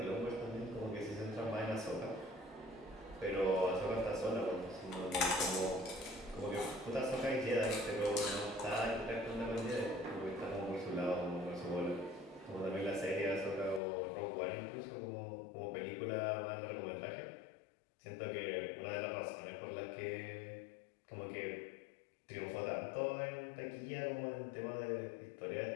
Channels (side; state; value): right; drops out; at 13.8 s